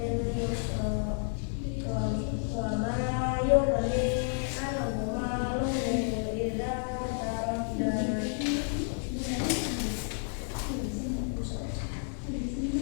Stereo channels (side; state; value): right; silent; 57 dB below the other